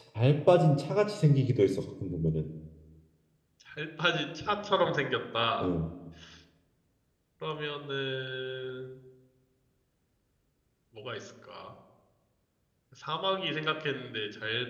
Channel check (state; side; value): identical; both; correlation 1.00